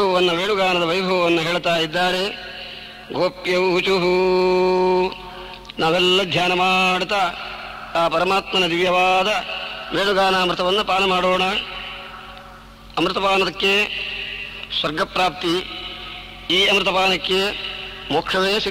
ವೇಣುಗಾನದ ವೈಭವವನ್ನು ಹೇಳ್ತಾ ಇದ್ದಾರೆ. ಗೋಪ್ಯೌಚುಹು, ನಾವೆಲ್ಲ ಧ್ಯಾನ ಮಾಡ್ತಾ ಆ ಪರಮಾತ್ಮನ ದಿವ್ಯವಾದ ವೇಣುಗಾನಾಮೃತವನ್ನು ಪಾನ ಮಾಡೋಣ. ಅಮೃತಪಾನಕ್ಕೆ ಸ್ವರ್ಗಪ್ರಾಪ್ತಿ, ಈ ಅಮೃತಪಾನಕ್ಕೆ ಮೋಕ್ಷವೇ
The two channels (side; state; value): both; identical; correlation 1.00